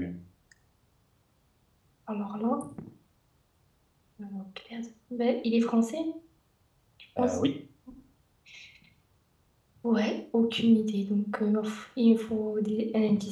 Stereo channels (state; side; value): identical; both; correlation 1.00